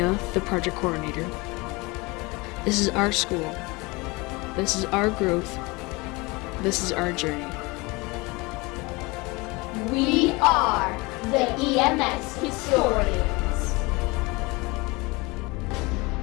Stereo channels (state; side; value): quieter; right; 24.8 dB